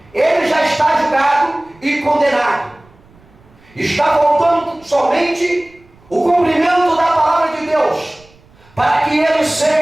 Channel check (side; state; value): right; noise; rumble, 29 dB below the sound